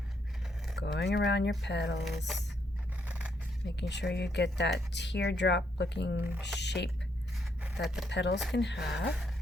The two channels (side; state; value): both; normal; correlation 0.75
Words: going around your petals, making sure you get that teardrop looking shape that the petals can have.